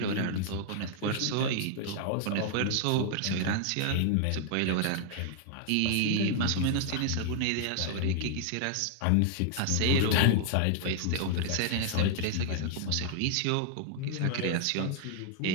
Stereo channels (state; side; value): different; both; correlation 0.00